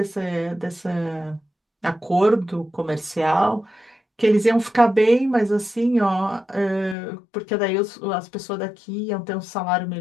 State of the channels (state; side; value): drops out; right; at 7.0 s